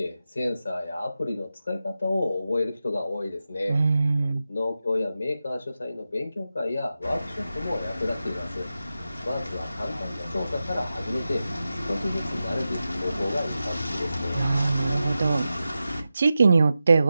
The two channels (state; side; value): inverted; both; correlation -0.92